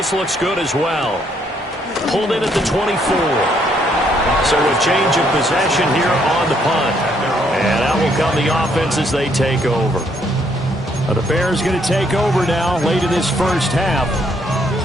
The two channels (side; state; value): both; normal; correlation 0.70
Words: looks good as well. Pulled in at the 24. So a change of possession here on the punt. And out will come the offense as they take over. The Bears going to take over now late in this first half.